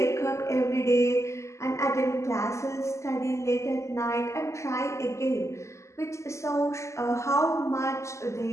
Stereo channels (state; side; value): late; right; 0.14 ms